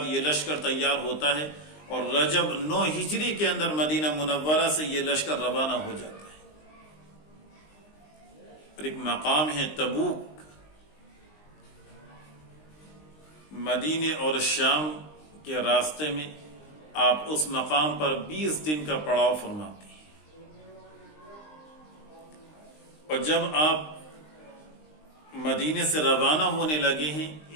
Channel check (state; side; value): late; right; 20 ms